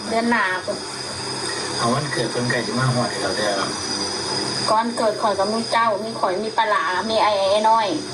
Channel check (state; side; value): identical; both; correlation 1.00